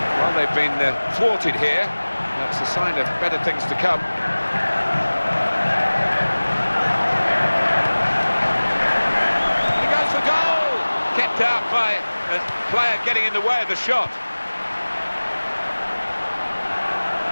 Well, they've been thwarted here. That's a sign of better things to come. He goes for goal! Kept out by a player getting in the way of the shot.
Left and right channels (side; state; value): both; inverted; correlation -1.00